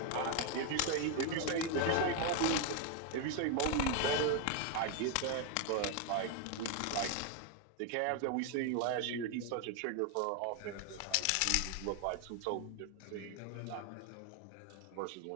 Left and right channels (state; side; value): different; both; correlation 0.01